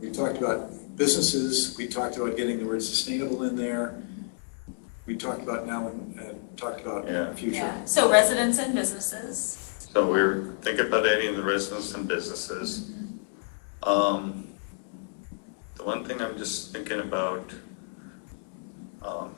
We talked about businesses, we talked about getting the word sustainable in there. We talked about now and talked about future. Yeah, so residents and businesses. So we're thinking about adding the residents and businesses. The one thing I'm just thinking about,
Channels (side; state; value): right; silent; 59 dB below the other